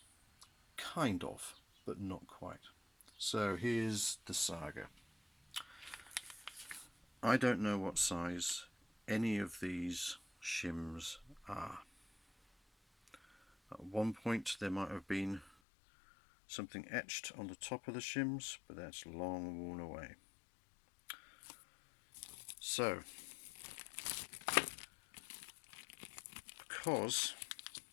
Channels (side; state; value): right; drops out; at 15.5 s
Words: Kind of, but not quite. So here's the saga. I don't know what size any of these shims are. At one point there might have been something etched on the top of the shims, but that's long worn away. So, because,